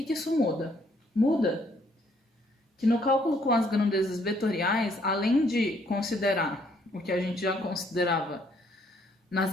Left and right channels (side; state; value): both; normal; correlation 0.67